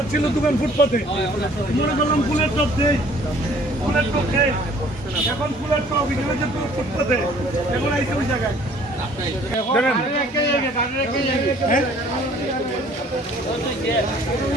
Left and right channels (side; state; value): both; normal; correlation 0.55